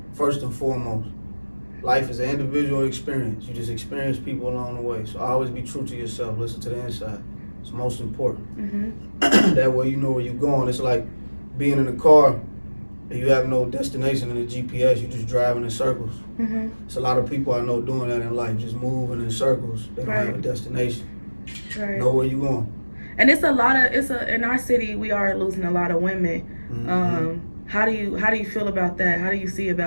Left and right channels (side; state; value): both; inverted; correlation -1.00